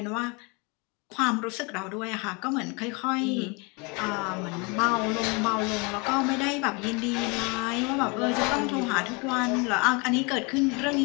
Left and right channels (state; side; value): quieter; right; 30.1 dB